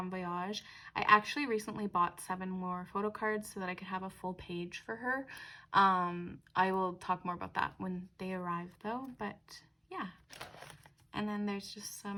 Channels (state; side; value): identical; both; correlation 1.00